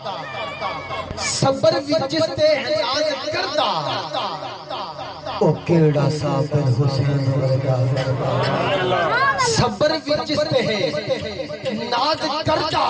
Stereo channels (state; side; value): identical; both; correlation 1.00